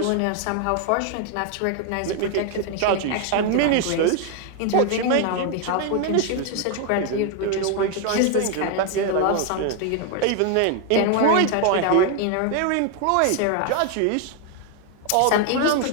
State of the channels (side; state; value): both; different; correlation 0.01